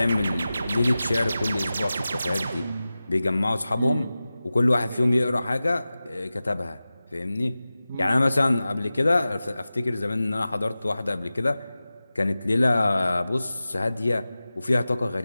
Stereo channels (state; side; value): inverted; both; correlation -0.96